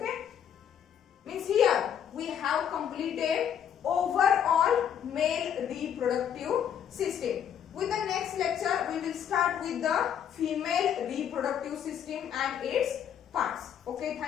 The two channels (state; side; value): quieter; right; 8.9 dB